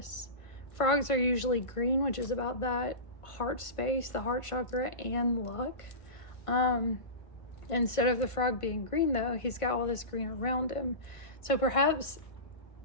Frogs are usually green, which is about that heart space, the heart chakra, and luck. Instead of the frog being green, though, he's got all this green around him. So perhaps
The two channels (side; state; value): right; late; 1.5 ms